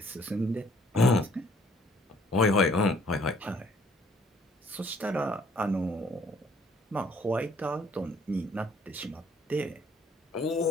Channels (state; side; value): normal; both; correlation 0.62